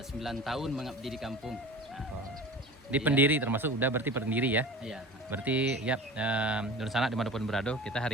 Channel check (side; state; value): both; normal; correlation 0.37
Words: sudah 9 tahun mengabdi di kampung. Di pendiri termasuk udah berarti pendiri ya. Iya. Berarti ya Nur Sanak dimanapun berada, kita